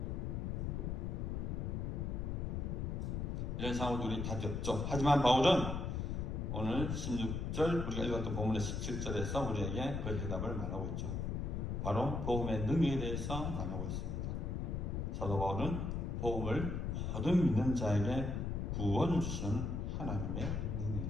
이런 상황도 우리 답이 없죠. 하지만 바울은 오늘 16절 우리가 읽었던 본문의 17절에서 우리에게 그 해답을 말하고 있죠. 바로 복음의 능력에 대해서 말하고 있습니다. 사도 바울은 복음을 모든 믿는 자에게 구원을 주시는 하나님의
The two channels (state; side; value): noise; left; rumble, 1 dB below the sound